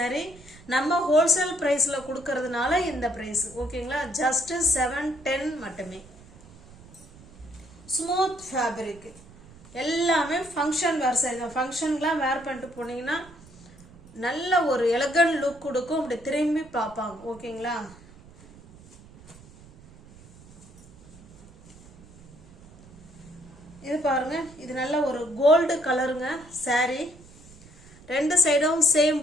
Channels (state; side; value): noise; right; rumble, 22 dB below the sound